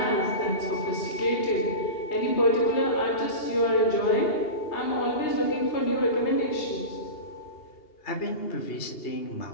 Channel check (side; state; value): right; late; 2.8 ms